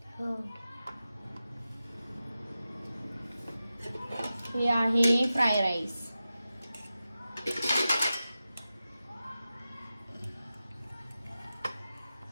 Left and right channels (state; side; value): inverted; both; correlation -0.93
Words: हो. हे आहे फ्राय राईस.